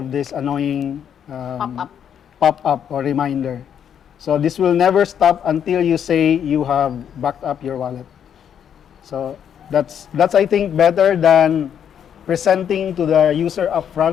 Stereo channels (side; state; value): right; quieter; 8.7 dB